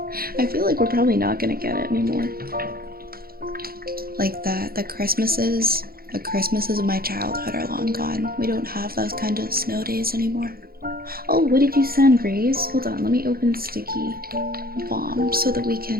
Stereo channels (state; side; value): late; left; 0.44 ms